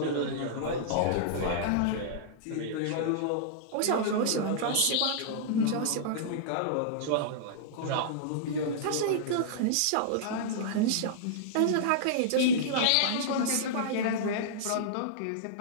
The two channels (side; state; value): both; different; correlation -0.02